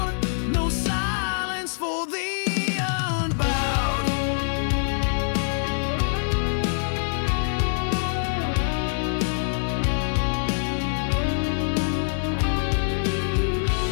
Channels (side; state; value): right; silent; 62 dB below the other